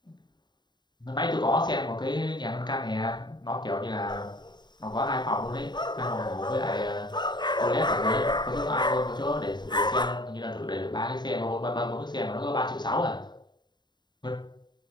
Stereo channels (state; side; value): late; right; 0.21 ms